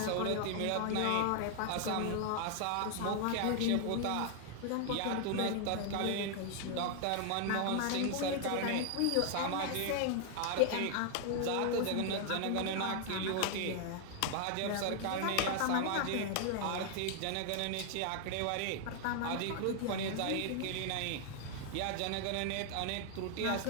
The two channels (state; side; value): different; both; correlation 0.00